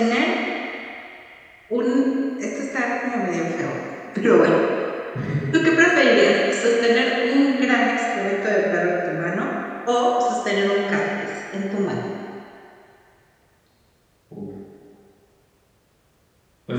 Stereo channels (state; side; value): identical; both; correlation 1.00